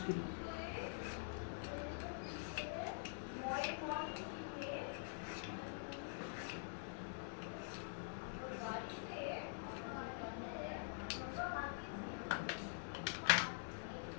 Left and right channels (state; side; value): silent; right; digital silence